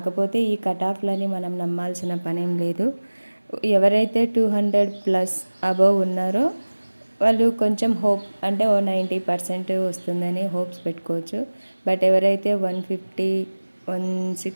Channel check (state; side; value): inverted; both; correlation -1.00